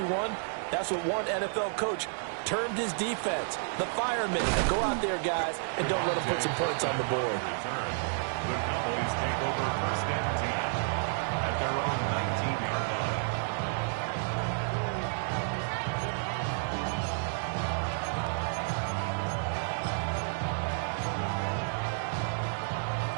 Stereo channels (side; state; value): left; silent; digital silence